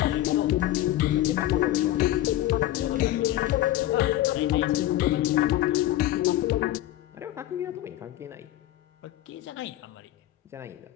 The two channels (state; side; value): quieter; right; 14.3 dB